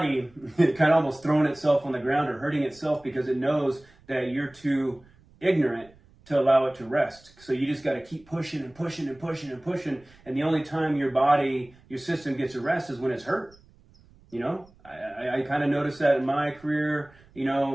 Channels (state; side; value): noise; right; rumble, 28 dB below the sound